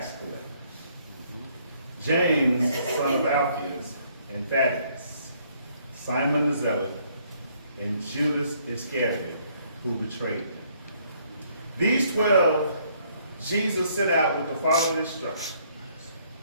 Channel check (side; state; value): both; inverted; correlation -0.66